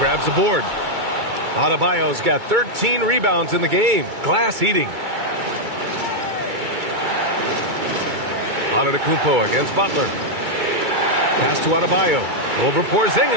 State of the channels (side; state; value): left; late; 2.3 ms